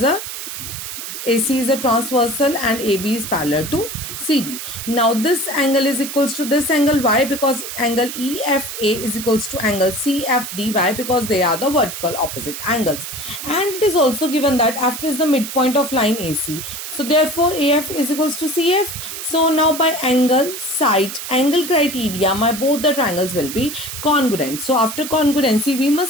is a transversal and AB is parallel to CD. Now this angle is equals to this angle. Why? Because angle EFA is equals to angle CFD. Why? Because they are the vertical opposite angles. And it is also given that F is the midpoint of line AC. So therefore AF is equals to CF. So now by angle, side, angle criteria, both the triangles will be congruent. So after congruency, we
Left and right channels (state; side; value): noise; right; hiss, 8 dB below the sound